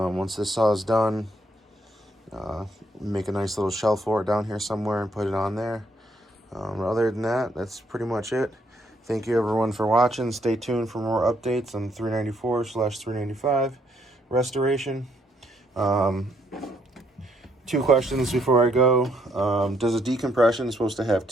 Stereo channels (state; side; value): normal; both; correlation 0.71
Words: this saw is done, make a nice little shelf for it down here somewhere and put it on there. Other than that, that's pretty much it. Thank you everyone for watching. Stay tuned for more updates on 394/395 restoration. 2 questions before I go. Does a decompression supposed to have